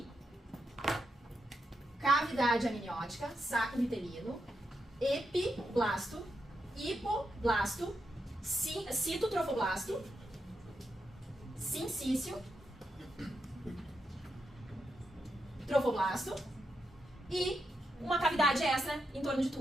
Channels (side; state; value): both; normal; correlation 0.84